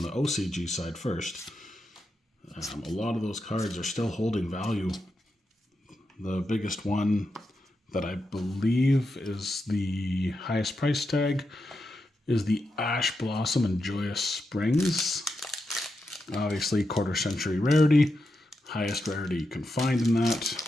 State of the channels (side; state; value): both; normal; correlation 0.86